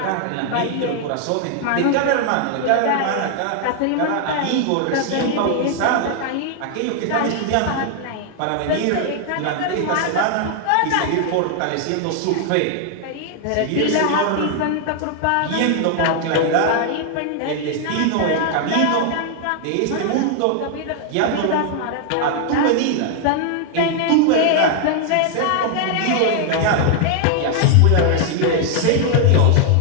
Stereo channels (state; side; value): different; both; correlation 0.00